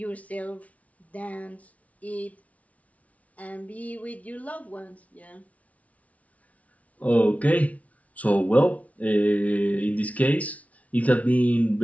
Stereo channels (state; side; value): late; right; 0.068 ms